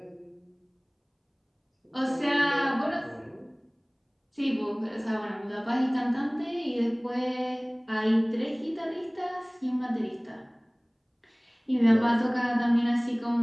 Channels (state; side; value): identical; both; correlation 1.00